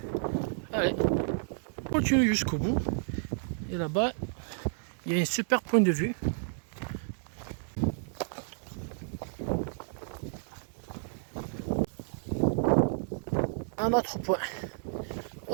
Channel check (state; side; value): silent; left; digital silence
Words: Allez, on continue jusqu'au bout. Et là-bas, il y a un super point de vue. Un autre point.